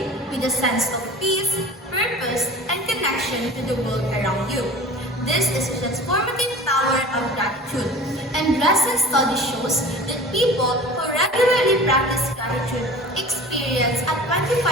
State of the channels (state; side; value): normal; both; correlation 0.39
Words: with a sense of peace, purpose, and connection to the world around you. This is the transformative power of gratitude, and recent study shows that people who regularly practice gratitude experience a 25%